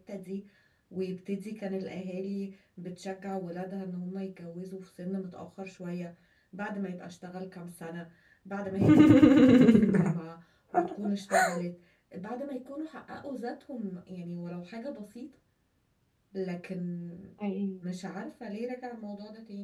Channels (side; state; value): both; identical; correlation 1.00